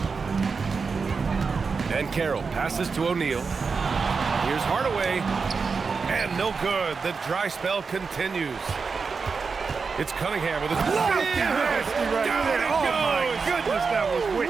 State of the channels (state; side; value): quieter; left; 5.0 dB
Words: And Carroll passes to O'Neal. Here's Hardaway. And no good. The dry spell continues. It's Cunningham with his Nasty right there. Oh, my goodness, that was wicked.